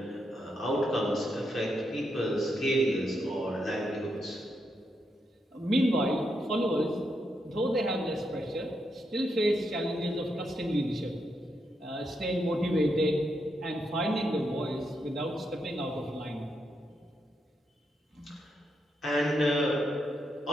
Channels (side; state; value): both; normal; correlation 0.82